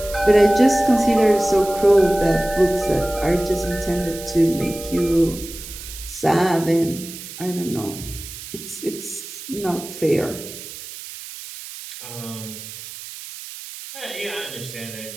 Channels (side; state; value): right; noise; hiss, 12 dB below the sound